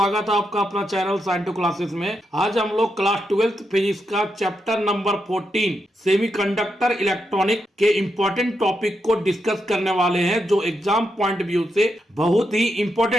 है आपका अपना चैनल साइंटू क्लासेस में। आज हम लोग क्लास 12th फिजिक्स का चैप्टर नंबर 14 सेमीकंडक्टर इलेक्ट्रॉनिक के इम्पोर्टेंट टॉपिक को डिस्कस करने वाले हैं, जो एग्जाम पॉइंट व्यू से बहुत ही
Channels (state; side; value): normal; both; correlation 0.83